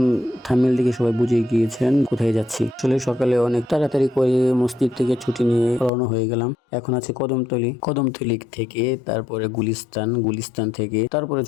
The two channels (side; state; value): right; drops out; at 5.9 s